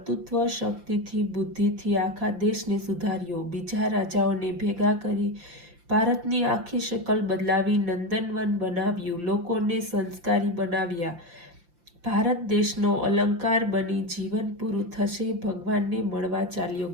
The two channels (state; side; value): late; left; 5.8 ms